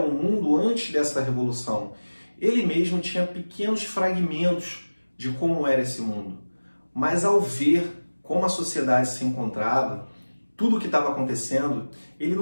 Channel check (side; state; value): both; inverted; correlation -1.00